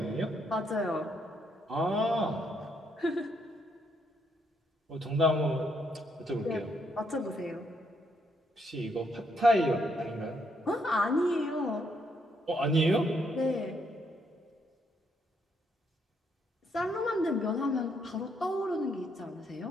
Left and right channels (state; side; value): normal; both; correlation 0.74